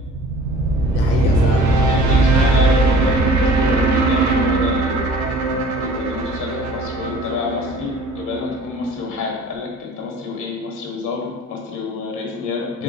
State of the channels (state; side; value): normal; both; correlation 0.46